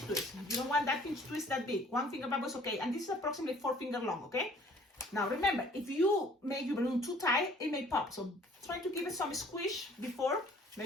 twist. You don't want that pinch twist that big. 1-finger bubble is okay, and this is approximately 4 finger long, okay? Now remember, if you make your balloon too tight, it may pop. So try to give it some squish before.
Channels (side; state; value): both; normal; correlation 0.55